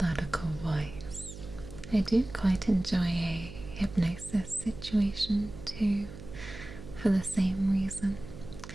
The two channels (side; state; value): right; noise; hum, 13 dB below the sound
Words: voice. I do quite enjoy a hypnosis situation too, for the same reason.